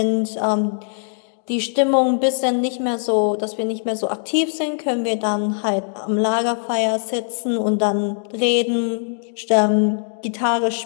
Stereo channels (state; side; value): silent; right; digital silence